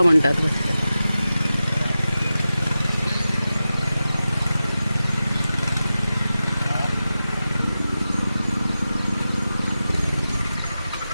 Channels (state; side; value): inverted; both; correlation -0.93